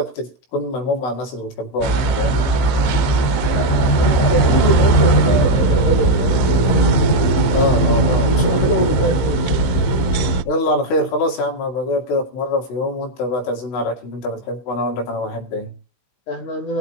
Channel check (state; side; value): late; right; 15 ms